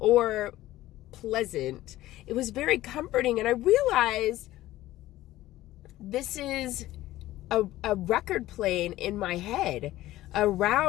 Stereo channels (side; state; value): right; quieter; 15.7 dB